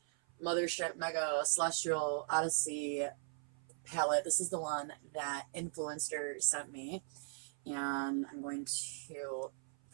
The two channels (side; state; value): left; silent; 52 dB below the other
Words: Mothership Mega Celestial Odyssey palette. This is the one that Influencer sent me, and I'm going to, if